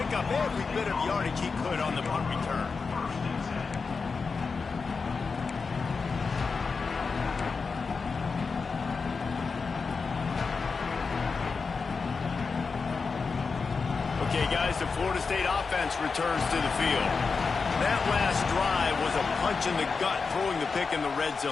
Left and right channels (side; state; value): right; quieter; 4.8 dB